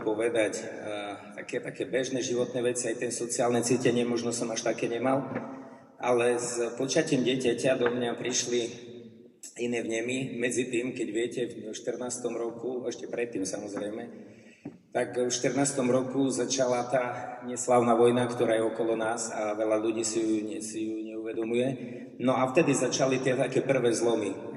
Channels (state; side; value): identical; both; correlation 1.00